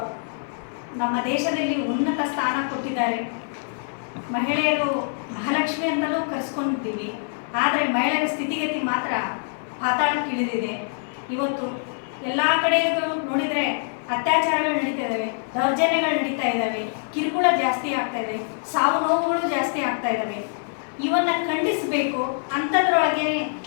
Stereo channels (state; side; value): silent; right; 56 dB below the other